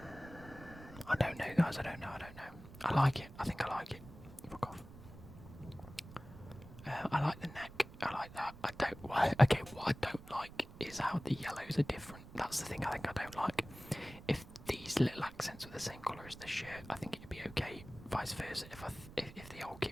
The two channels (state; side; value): noise; right; rumble, 16 dB below the sound